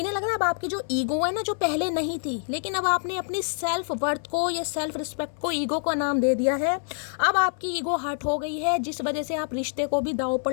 लग रहा है अब आपकी जो ईगो है ना, जो पहले नहीं थी, लेकिन अब आपने अपनी सेल्फ वर्थ को या सेल्फ रिस्पेक्ट को ईगो का नाम दे दिया है। अब आपकी ईगो हर्ट हो गई है, जिस वजह से आप रिश्ते को भी दांव पर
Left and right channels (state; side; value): silent; right; 61 dB below the other